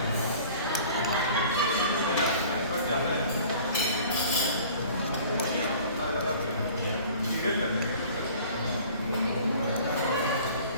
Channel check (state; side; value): inverted; both; correlation -0.48